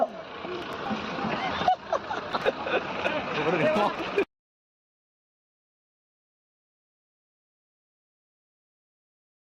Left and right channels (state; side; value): identical; both; correlation 1.00